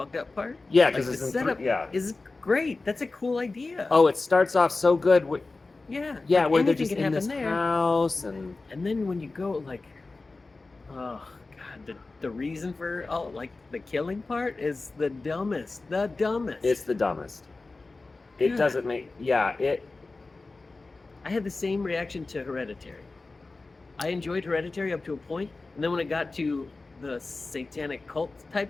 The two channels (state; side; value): quieter; right; 3.5 dB